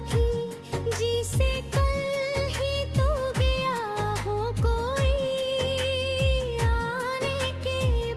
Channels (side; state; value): both; identical; correlation 1.00